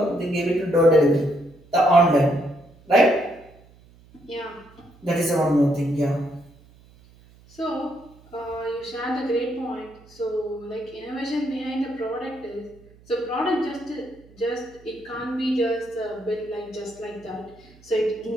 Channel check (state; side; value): noise; right; hum, 26 dB below the sound